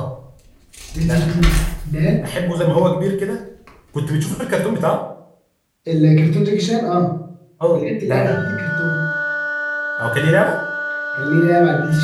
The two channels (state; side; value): identical; both; correlation 1.00